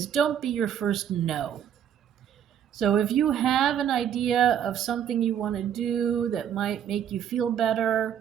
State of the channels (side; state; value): left; quieter; 9.4 dB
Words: don't be your first no. So if you have an idea of something you want to do that might make you feel